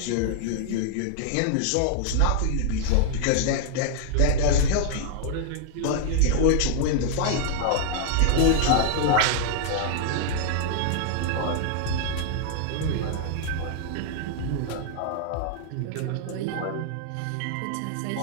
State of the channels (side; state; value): both; different; correlation -0.01